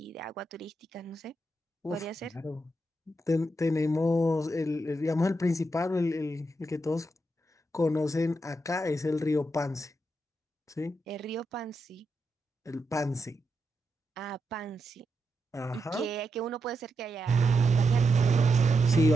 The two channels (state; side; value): normal; both; correlation 0.85